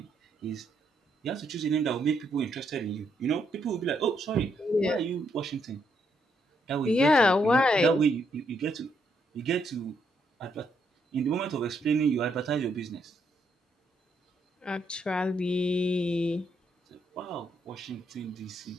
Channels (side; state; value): both; normal; correlation 0.76